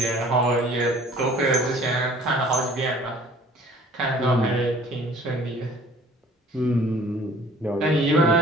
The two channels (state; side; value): normal; both; correlation 0.51